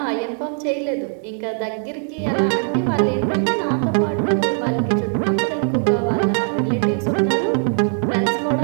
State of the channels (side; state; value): left; silent; 60 dB below the other